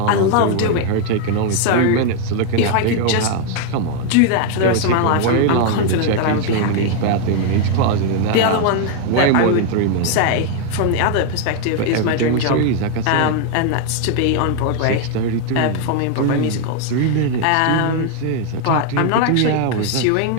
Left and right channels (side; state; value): both; different; correlation 0.00